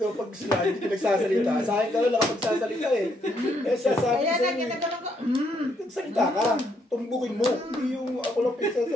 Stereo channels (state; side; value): normal; both; correlation 0.73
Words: pag sila hindi ka nagsasalita, sa akin ka lang nakapagsasalita eh. Eh, sasabi Kaya sa'yo na, eh. ginaganon ko. Nagsalita ka. Tumbukin mo. Hindi yung ako lang